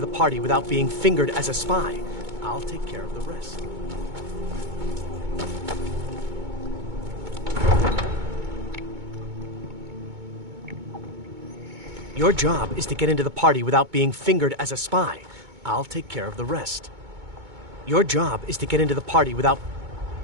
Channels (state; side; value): late; left; 2.2 ms